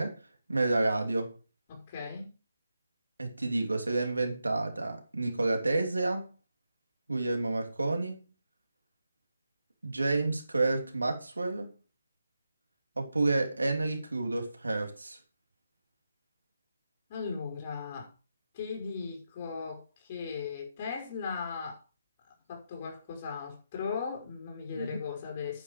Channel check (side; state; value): both; inverted; correlation -0.88